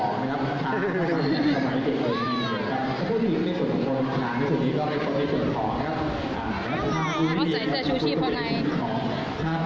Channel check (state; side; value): identical; both; correlation 1.00